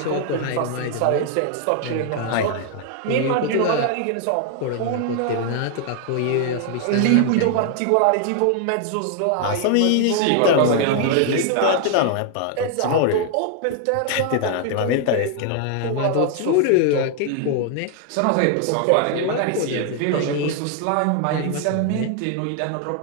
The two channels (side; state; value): both; different; correlation 0.00